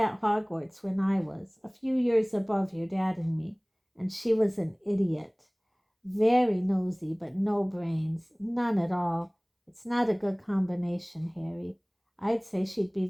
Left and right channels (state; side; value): identical; both; correlation 1.00